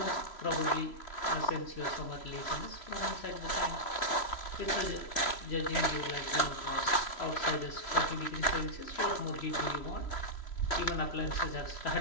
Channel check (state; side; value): late; right; 3.1 ms